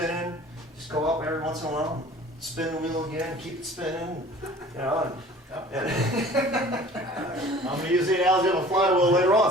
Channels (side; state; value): both; normal; correlation 0.47